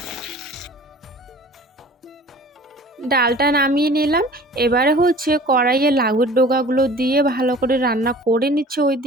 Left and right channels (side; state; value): both; normal; correlation 0.45